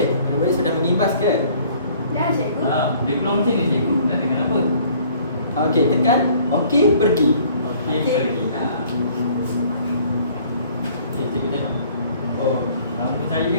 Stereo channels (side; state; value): both; inverted; correlation -0.56